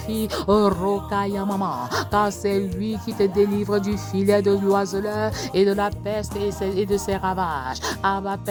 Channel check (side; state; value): both; identical; correlation 1.00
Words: Roka Yamama. Car c'est lui qui te délivre du filet de l'oiseleur et de la peste et de ses ravages. Abba